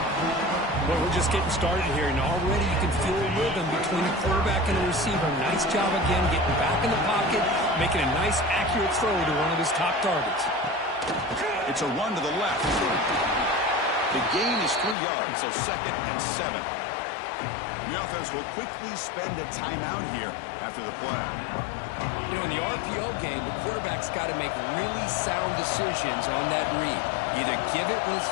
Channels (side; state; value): right; drops out; at 15.0 s